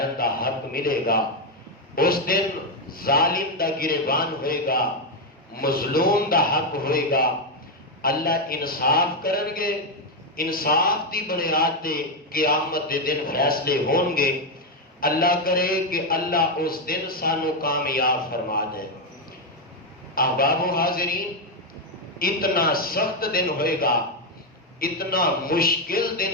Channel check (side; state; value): both; normal; correlation 0.04